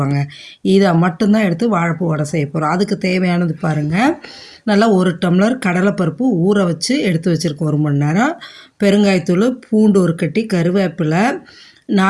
இதை மட்டும்தான் எடுத்து வாழைப்பூ வடை செய்ய போகிறோம். அதுக்கு தேவையானது பாருங்கள், நல்லா 1 டம்ளர் கடலைப்பருப்பு ஊற வச்சு எடுத்து வச்சுருக்கோம் 1 மணி நேரம். பெருங்காயத்தூள், பூண்டு 1 கட்டி, கருவேப்பிலை,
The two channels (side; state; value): both; identical; correlation 1.00